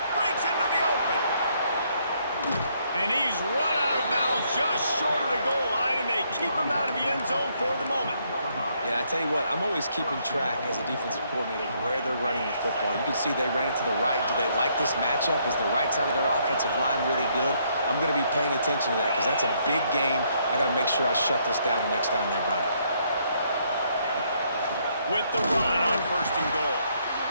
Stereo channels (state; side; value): inverted; both; correlation -0.71